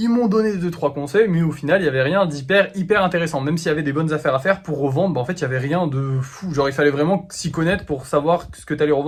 Ils m'ont donné 2-3 conseils, mais au final, il n'y avait rien hyper intéressant. Même s'il y avait des bonnes affaires à faire pour revendre, bah en fait, il n'y avait rien de fou. Genre, il fallait vraiment s'y connaître pour savoir ce que tu allais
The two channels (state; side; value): identical; both; correlation 1.00